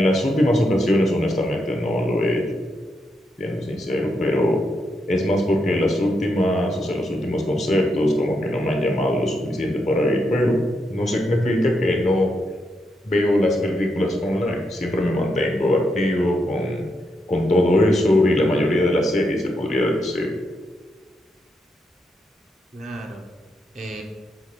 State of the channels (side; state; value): both; normal; correlation 0.81